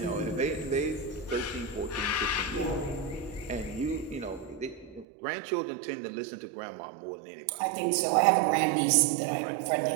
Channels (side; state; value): left; drops out; at 5.1 s